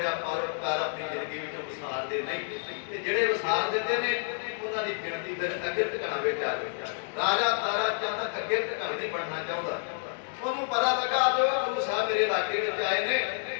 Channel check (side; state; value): right; silent; digital silence